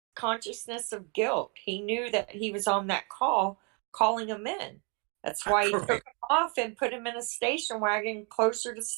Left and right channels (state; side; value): quieter; left; 34.4 dB